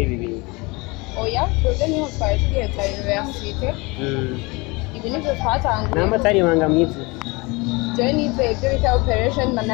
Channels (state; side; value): quieter; right; 25.8 dB